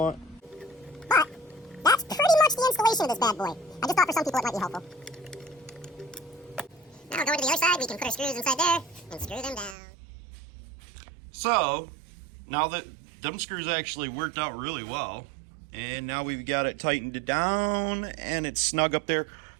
But that's pretty much the installation of this bad boy. I just thought for some people it might be helpful. Now going to the other side, we can put our screws inside there and screw them down. So now that them screws actually worked out really well, and now we've got it tightened down and it's snug up there,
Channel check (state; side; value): drops out; left; at 9.8 s